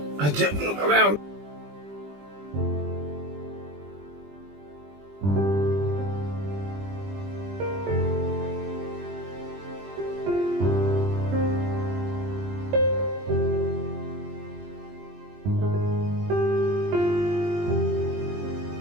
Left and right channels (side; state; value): left; late; 20 ms